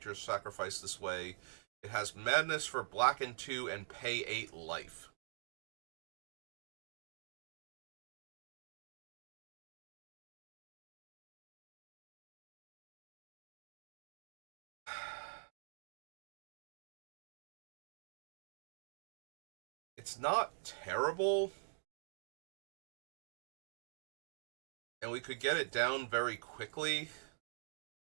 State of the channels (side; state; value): left; silent; digital silence